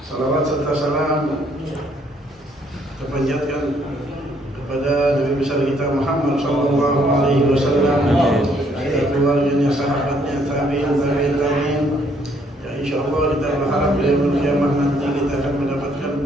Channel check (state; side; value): normal; both; correlation 0.67